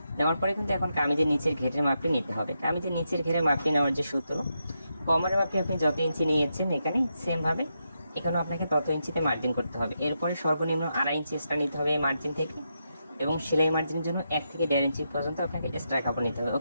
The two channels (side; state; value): both; inverted; correlation -0.84